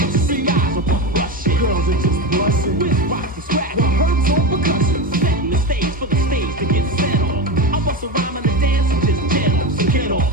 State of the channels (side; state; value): both; normal; correlation 0.20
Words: you see guys are rushing? Girls are just busting. With rocks and scratch. The herbs on percussion. Setting the stage for the stage to get set off. I bust a rhyme on the dance and just jam off. So get